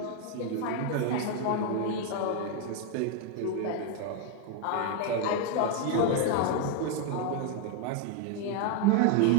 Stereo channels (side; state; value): both; different; correlation 0.01